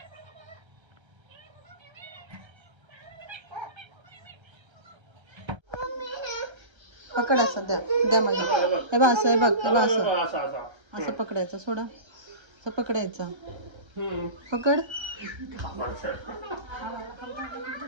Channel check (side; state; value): left; late; 1.3 ms